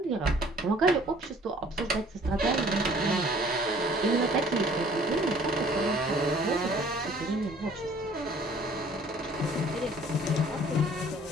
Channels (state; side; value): normal; both; correlation 0.54